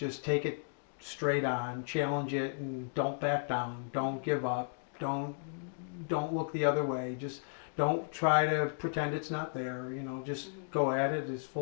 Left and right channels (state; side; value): silent; right; digital silence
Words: take it straight on, challenge it, and don't back down. Don't give up. Don't look the other way. Just don't try to pretend it's not there. Just go at it